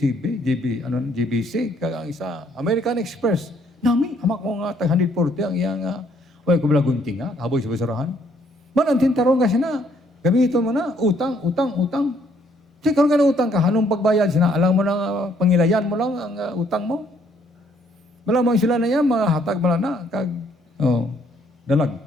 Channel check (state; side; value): normal; both; correlation 0.67